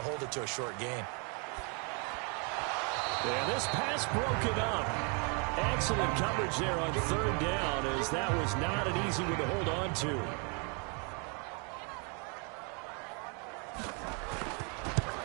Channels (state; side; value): quieter; left; 35.7 dB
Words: it to a short gain. And this pass broken up. Excellent coverage there on 3rd down, as that was not an easy one to hold on to.